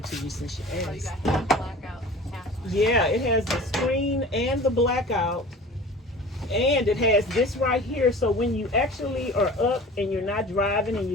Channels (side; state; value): both; normal; correlation 0.40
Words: to you since you asked. Oh, you got half blackout, half. Yeah, it has the screen and the blackout. And it has this right here, so when you actually are up and you're not driving and